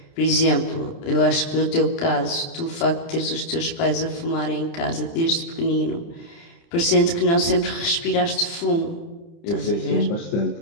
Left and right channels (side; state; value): right; late; 30 ms